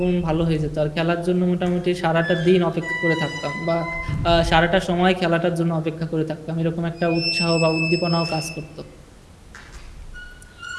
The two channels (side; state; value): both; identical; correlation 1.00